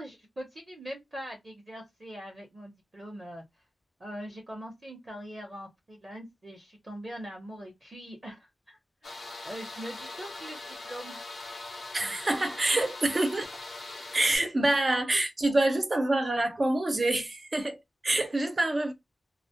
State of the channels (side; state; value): both; normal; correlation 0.95